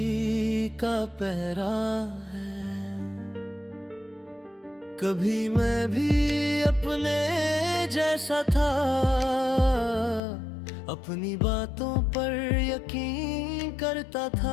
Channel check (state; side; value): drops out; right; at 10.2 s